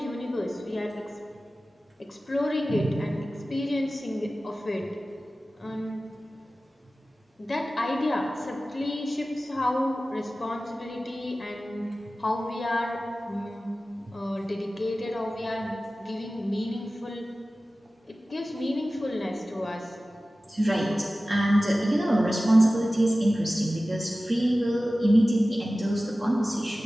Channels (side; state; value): both; normal; correlation 0.96